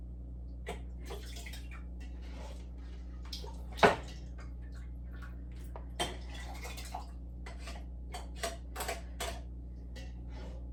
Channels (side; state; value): both; identical; correlation 1.00